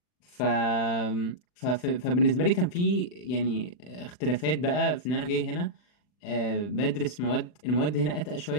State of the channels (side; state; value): right; late; 40 ms